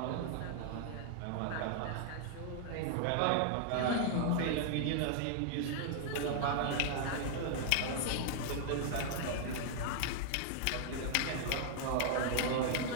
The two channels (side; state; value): both; different; correlation -0.01